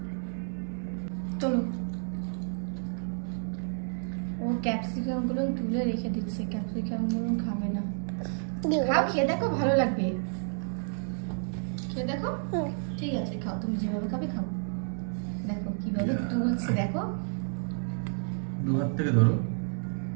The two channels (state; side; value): silent; left; 58 dB below the other